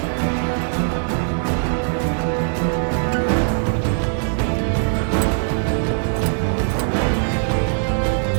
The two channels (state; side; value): silent; left; digital silence